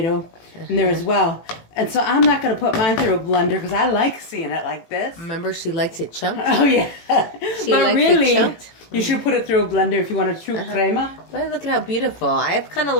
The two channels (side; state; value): right; late; 18 ms